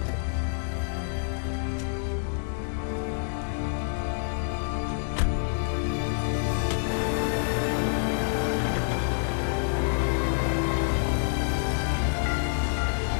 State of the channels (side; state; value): right; silent; 60 dB below the other